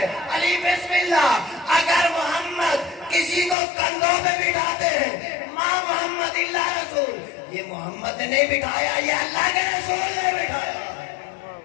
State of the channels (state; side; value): drops out; right; at 3.6 s